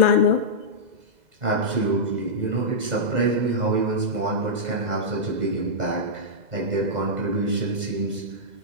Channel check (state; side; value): late; left; 2.0 ms